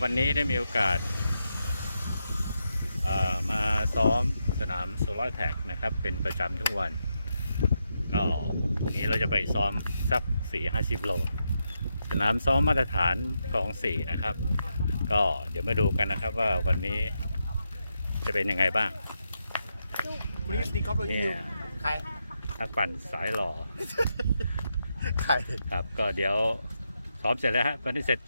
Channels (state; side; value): inverted; both; correlation -0.84